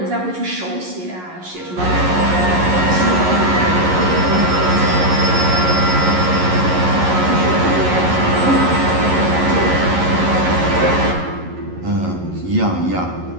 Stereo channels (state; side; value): late; left; 11 ms